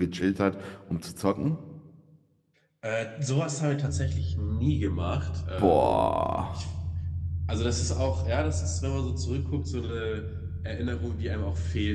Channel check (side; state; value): both; identical; correlation 1.00